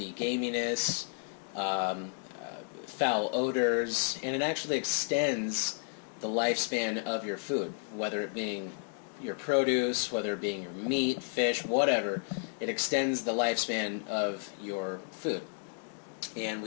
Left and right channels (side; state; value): right; silent; 56 dB below the other